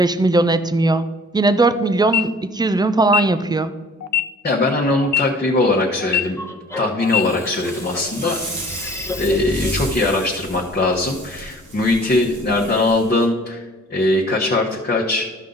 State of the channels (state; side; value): normal; both; correlation 0.50